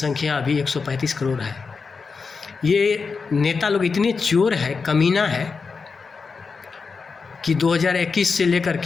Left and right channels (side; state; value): right; quieter; 4.9 dB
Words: अभी 135 करोड़ है। ये नेता लोग इतने चोर है, कमीना है कि 2021 से लेकर